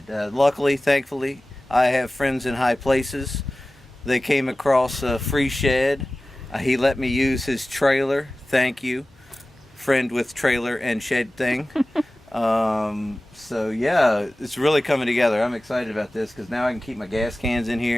Luckily, thankfully, I have friends in high places. They came across a free shed. He let me use his trailer. Thank you, friend with trailer and shed thing. So yeah, it's really coming together. I'm excited about this because now I can keep my gas cans in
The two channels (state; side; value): normal; both; correlation 0.96